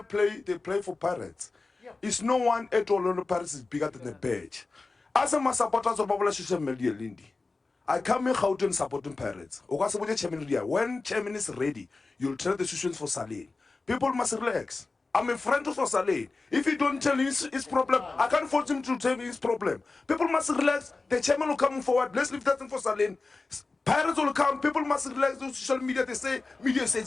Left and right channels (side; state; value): right; quieter; 3.7 dB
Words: they play for Pirates. It's no one at orlandopirates is bigger than the badge. As a supporters of popular social media, Lindy, I come in Gauteng supporting Pirates. When chairman is ready, you'll tell the situations for Saling. People must relax. I'm a friend of Saling. If you don't tell his problem, I can't force him to tell me his problem. People must relax. The chairman will come forward. Let's leave that thing for Saling. Pirates will come. People must relax. The social media, they say, media